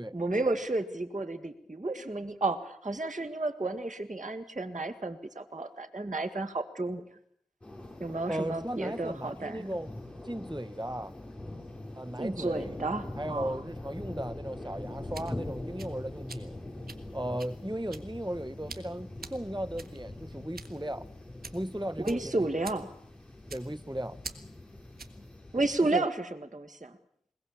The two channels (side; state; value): both; normal; correlation 0.80